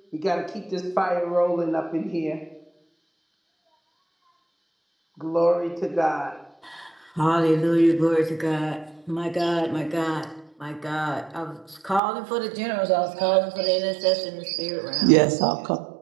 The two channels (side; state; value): left; drops out; at 12.0 s